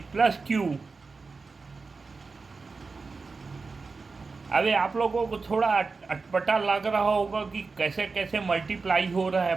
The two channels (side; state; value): left; quieter; 4.3 dB